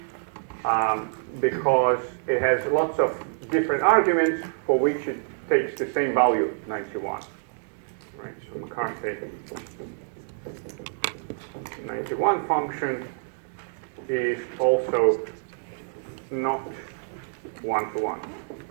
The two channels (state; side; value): silent; left; digital silence